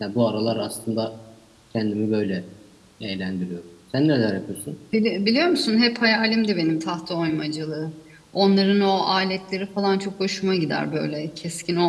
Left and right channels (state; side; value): identical; both; correlation 1.00